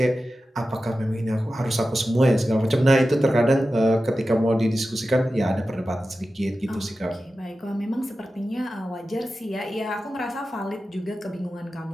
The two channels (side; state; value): both; normal; correlation 0.93